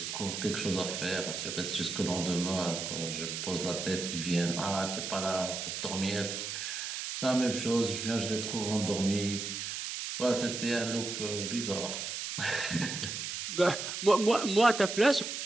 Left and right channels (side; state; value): right; noise; hiss, 4 dB below the sound